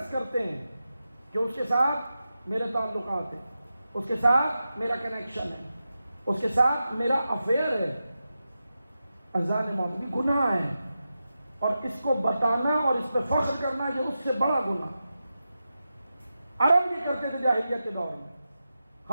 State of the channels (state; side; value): inverted; both; correlation -0.91